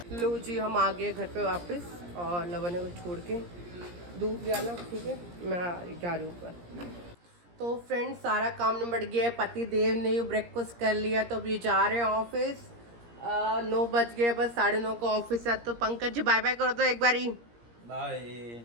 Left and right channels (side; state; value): left; late; 17 ms